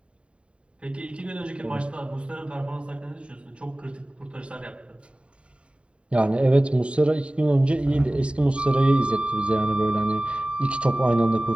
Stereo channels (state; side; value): late; left; 0.059 ms